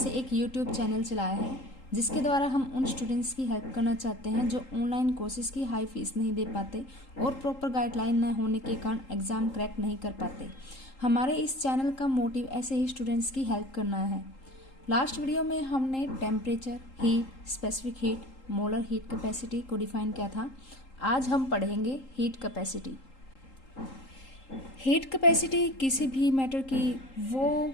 एक यूट्यूब चैनल चलाया है, जिसके द्वारा हम उन स्टूडेंट्स की हेल्प करना चाहते हैं जो ऑनलाइन कोर्सेज की हाई फीस नहीं दे पाते और प्रॉपर गाइडलाइन न होने के कारण एग्ज़ाम क्रैक नहीं कर पाते। हमारे इस चैनल का मोटिव ऐसे ही स्टूडेंट्स की हेल्प करना है। लास्ट वीडियो में हमने temperature, heat, specific heat, molar heat capacity को डिफाइन किया था। आज हम पढ़ेंगे हीट कैपेसिटी। हीट कैपेसिटी किसी भी मैटर की वो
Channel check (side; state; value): right; late; 3.8 ms